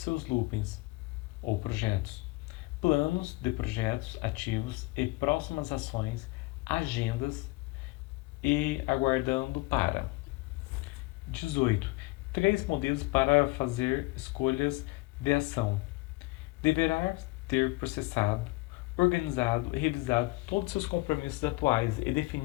loopings ou projetos, planos de projetos ativos e próximas ações, agendas e aguardando para. 18. 3 modelos para fazer escolhas de ação. Deverá ter processado, organizado e revisado todos os seus compromissos atuais e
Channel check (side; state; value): right; quieter; 22.8 dB